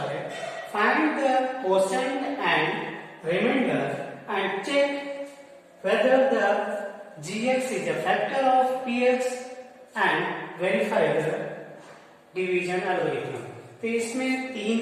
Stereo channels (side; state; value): both; identical; correlation 1.00